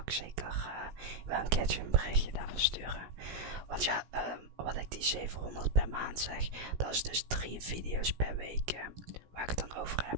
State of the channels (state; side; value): late; left; 17 ms